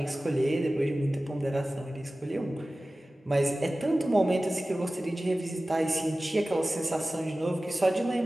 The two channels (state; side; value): normal; both; correlation 0.96